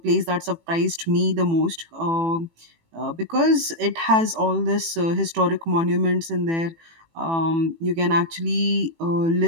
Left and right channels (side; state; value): left; late; 18 ms